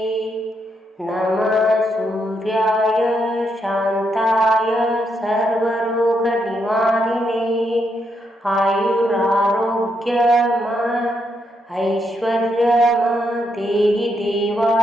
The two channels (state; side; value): normal; both; correlation 0.79